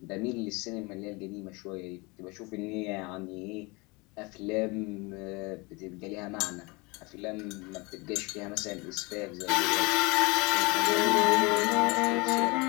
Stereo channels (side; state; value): right; quieter; 26.7 dB